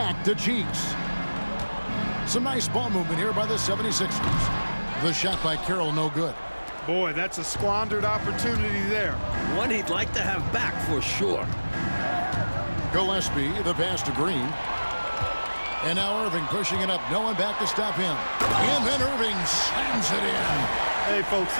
to Cheeks. Some nice ball movement here by the 76ers. The shot by Carroll, no good. Boy, that's a squandered opportunity there. One he'd like to have back for sure. Gillespie, the pass to Green. And now Irving pushing it up. No one back to stop him. And then Irving slams it in. Hey, folks,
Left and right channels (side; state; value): both; inverted; correlation -1.00